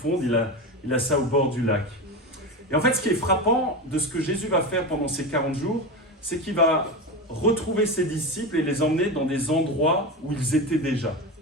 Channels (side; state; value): both; normal; correlation 0.21